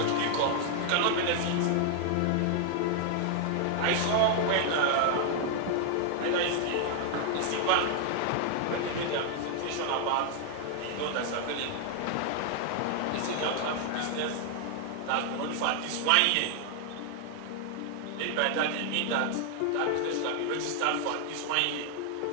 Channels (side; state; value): both; different; correlation 0.00